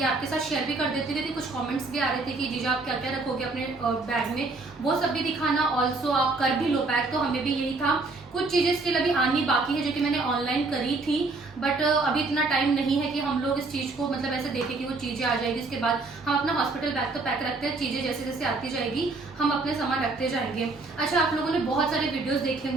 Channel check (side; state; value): left; quieter; 3.5 dB